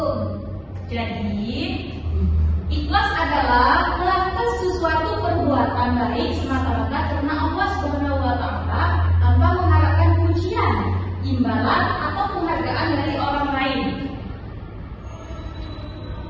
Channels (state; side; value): identical; both; correlation 1.00